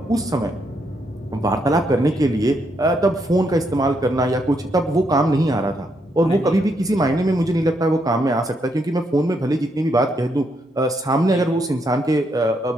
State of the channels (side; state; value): both; normal; correlation 0.77